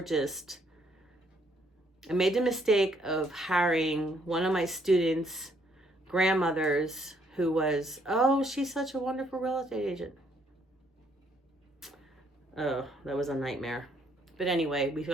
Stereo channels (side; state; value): both; normal; correlation 0.68